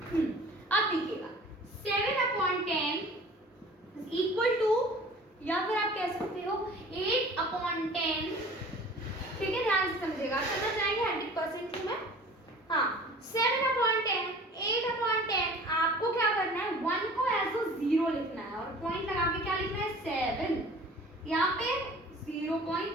अब देखिएगा 7/10 इज इक्वल टू, या फिर आप कह सकते हो 8/10। ठीक है, ध्यान से समझिएगा, समझ जाएंगे 100% में। हाँ, 7/10, 8/10 आपको क्या करना है? 1 को एज अ 0 लिखना है और पॉइंट लगा के क्या लिखना है? 7। यहाँ पे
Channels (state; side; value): normal; both; correlation 0.45